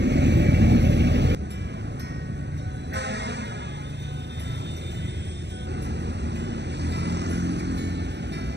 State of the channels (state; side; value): late; left; 0.50 ms